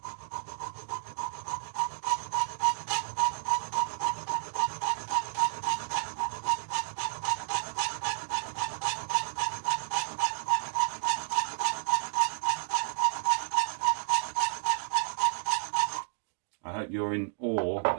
I hope you're in awe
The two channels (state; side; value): silent; left; digital silence